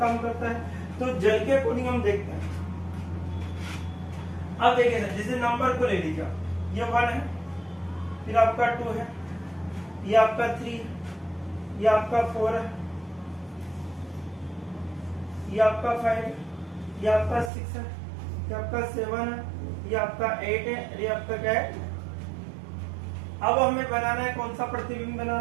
काम करता है। तो जल के अकॉर्डिंग हम देखते हैं। अब देखिए सर, जैसे नंबर को ले लीजिए, ये 1 है, फिर आपका 2 है, ये आपका 3 है, ये आपका 4 है, ये आपका 5 है, ये आपका 6 है, ये आपका 7 है, ये आपका 8 है, ये आपका क्या है। अब हमें बनाना है कौन सा प्रतिबिंब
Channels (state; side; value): drops out; left; at 17.5 s